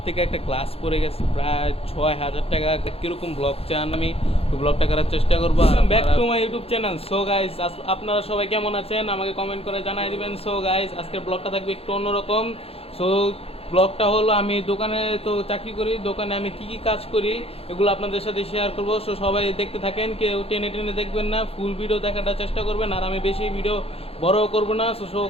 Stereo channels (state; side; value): late; right; 0.28 ms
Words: থেকে একটা গ্লাস পড়ে গেছে, প্রায় 6,000 টাকা। কিরকম ব্লগ চান আমি ব্লগটা করার চেষ্টা করবো। Back to my YouTube channel. So guys, আপনারা সবাই কেমন আছেন আমাকে কমেন্ট করে জানাই দিবেন। সো গাইস, আজকের ব্লগটা থাকবে একটু অন্যরকম। সো ব্লগটা হলো, আমি দোকানে তো চাকরি করি, দোকানে আমি কি কি কাজ করি এগুলো আপনাদের সাথে শেয়ার করবো। সো সবাই দেখতে থাকেন, কেউ টেনে টেনে দেখবেন না, ফুল ভিডিও দেখাটা চেষ্টা করবেন। আর আমি বেশি ভিডিও বড় করব না। সো